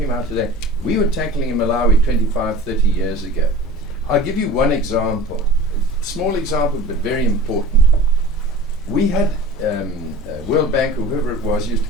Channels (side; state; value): both; normal; correlation 0.38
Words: about today, we were tackling in Malawi 25, 30 years ago. I'll give you one example, small example, but very important. We had World Bank or whoever it was used to